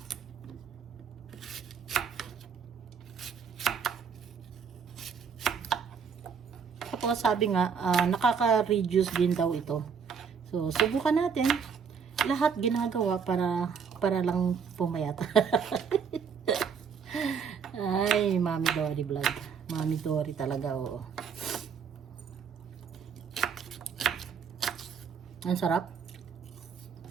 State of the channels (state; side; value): quieter; left; 6.5 dB